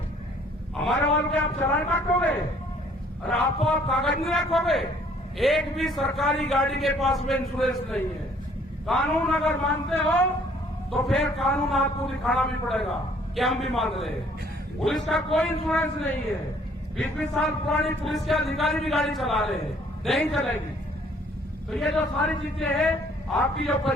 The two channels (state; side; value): normal; both; correlation 0.60